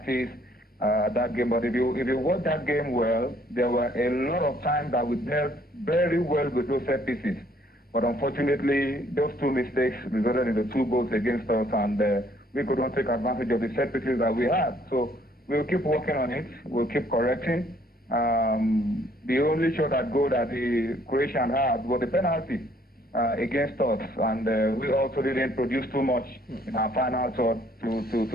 that game. But if you watch that game well, there were a lot of times that we dealt very well with those set pieces. But unfortunately, those 2 mistakes resulted in the 2 goals against us, and we couldn't take advantage of the set pieces that we had. So we'll keep working on it. We'll keep correcting. The only shot at goal that the Croatian had was the penalty against us, and we also didn't produce too much in our final shot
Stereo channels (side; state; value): both; normal; correlation 0.64